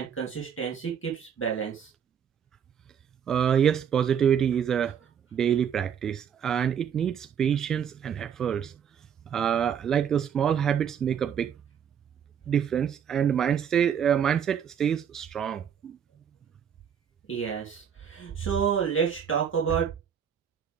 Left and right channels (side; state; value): left; quieter; 8.2 dB